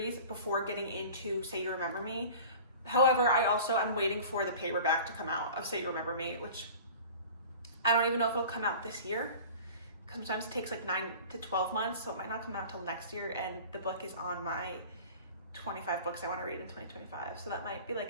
before getting into Say You Remember Me. However, I'm waiting for the paperback to come out of Say You Remember Me, which I don't even know if it'll come out this year. Sometimes it takes like 9 to 12 months, so it might not come out till next year, and the book is on my 25 books I want to read in 2025. So that might be like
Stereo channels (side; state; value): both; inverted; correlation -0.40